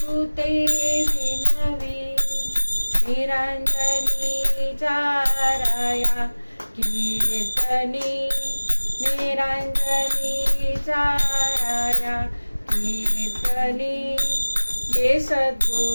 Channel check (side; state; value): both; inverted; correlation -1.00